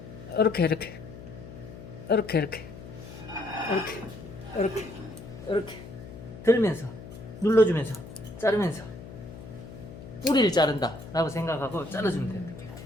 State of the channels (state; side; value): noise; left; hum, 14 dB below the sound